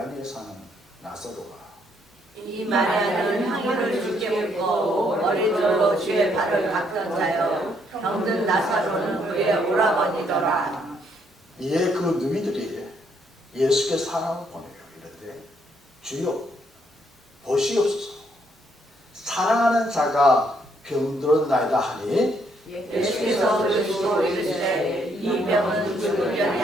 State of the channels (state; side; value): normal; both; correlation 0.71